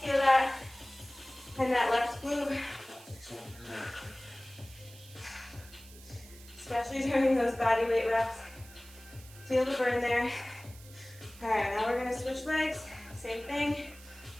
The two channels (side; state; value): right; noise; hiss, 20 dB below the sound